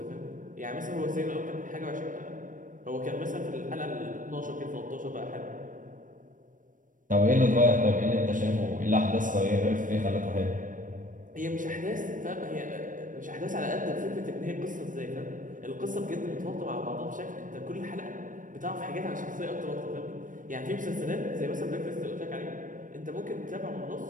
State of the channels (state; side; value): late; left; 0.38 ms